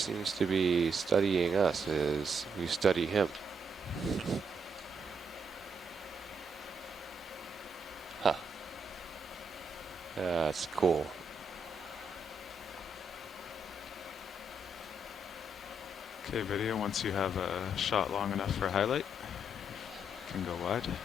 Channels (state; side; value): normal; both; correlation 0.76